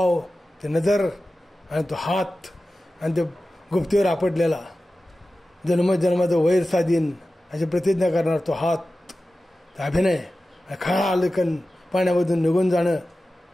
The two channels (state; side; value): normal; both; correlation 0.95